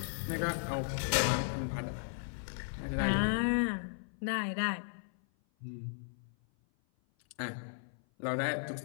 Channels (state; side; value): silent; right; 54 dB below the other